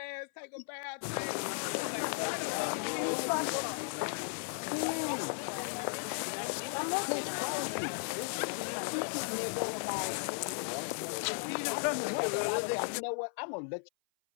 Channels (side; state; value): right; silent; 54 dB below the other